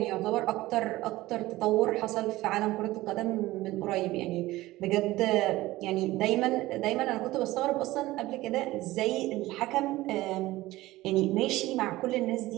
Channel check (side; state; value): left; quieter; 17.8 dB